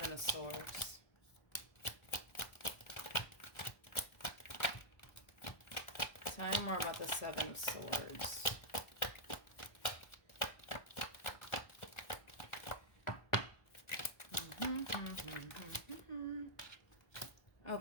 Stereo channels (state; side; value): late; right; 1.4 ms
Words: of Swords. Tell me more about the Seven of Swords.